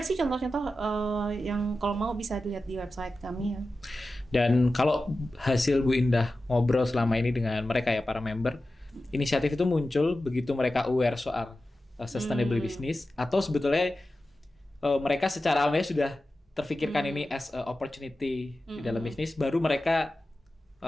sih contoh-contoh yang kalau mau bisa dilihat di website kami ya. Dan kalau hasil Bu Indah ngobrol selama ini dengan mereka ya para member, inisiatif itu muncul begitu mereka aware soal sustainable business, atau sebetulnya mereka secara awalnya sudah terfikirkan ini as a opportunity di dalam bisnis, baru mereka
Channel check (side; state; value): both; normal; correlation 0.94